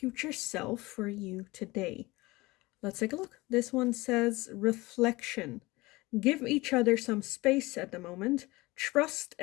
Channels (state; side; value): quieter; right; 21.6 dB